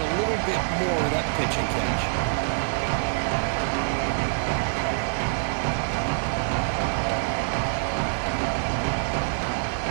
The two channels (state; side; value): silent; left; 61 dB below the other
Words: a little bit more of that pitch and catch.